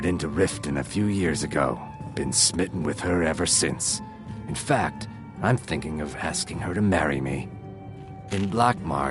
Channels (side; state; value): both; identical; correlation 1.00